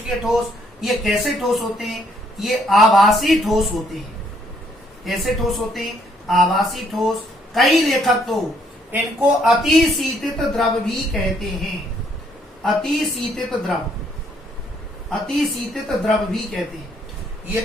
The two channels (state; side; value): normal; both; correlation 0.68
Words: ठोस, ये कैसे ठोस होते हैं, ये आभासी ठोस होते हैं। कैसे ठोस होते हैं, आभासी ठोस। कई लेखक तो इनको अतिशीतित द्रव भी कहते हैं, अतिशीतित द्रव भी कहते हैं। ये